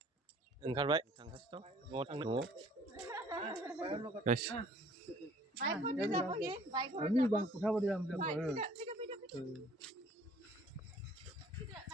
ओंखारबाय थांगासिनो दं. न'आव थांनो. न'आव. Guys. Ini bang pusat dia ambil.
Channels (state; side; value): normal; both; correlation 0.55